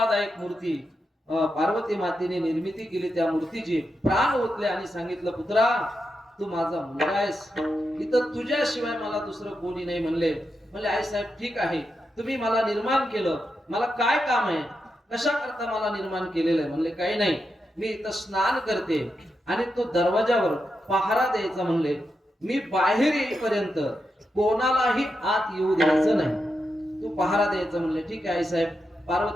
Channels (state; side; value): normal; both; correlation 0.86